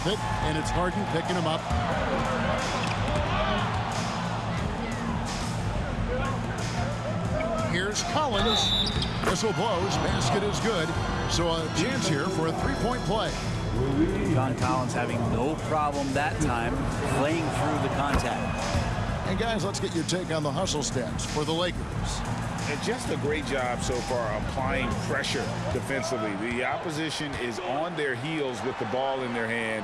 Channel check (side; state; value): both; identical; correlation 1.00